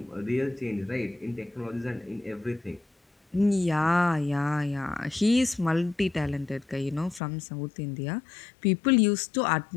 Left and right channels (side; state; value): right; drops out; at 7.2 s